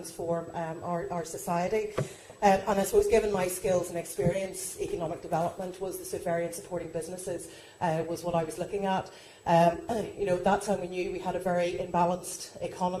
our society. And I suppose, given my skills and experience, economic development was the sort of area in supporting businesses was what I was looking at. At that time we knew we had a very imbalanced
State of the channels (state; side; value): identical; both; correlation 1.00